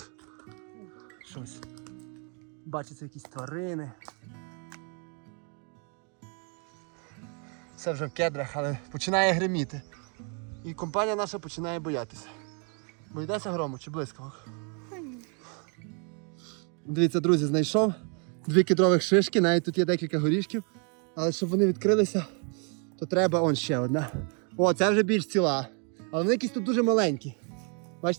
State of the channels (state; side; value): quieter; left; 38.3 dB